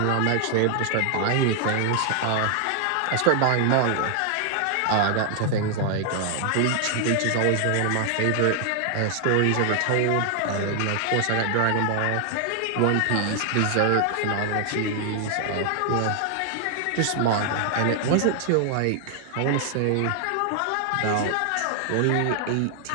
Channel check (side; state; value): both; different; correlation 0.00